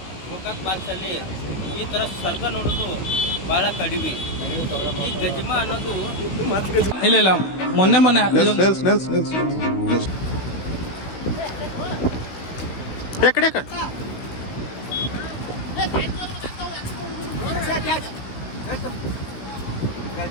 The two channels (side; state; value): right; late; 16 ms